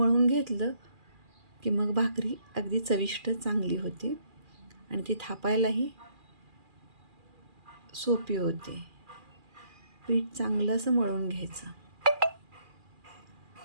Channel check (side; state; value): left; late; 2.4 ms